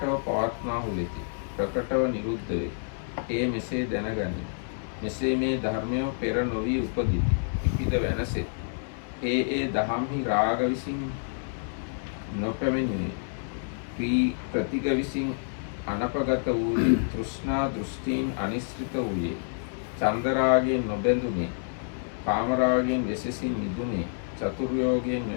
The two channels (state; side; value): silent; right; digital silence